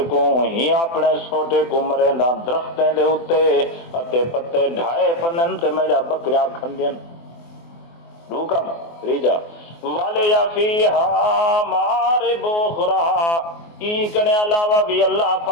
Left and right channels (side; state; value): right; late; 24 ms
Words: کو ہی اپنے سوٹے کو مریندا درختیں دے اوتے اتے پتے ڈھائے پنن تے میرا بکریاں کھندین. دو کم ریجا والے یا فیہا مارب اخرى ای کنے علاوہ بھی اللہ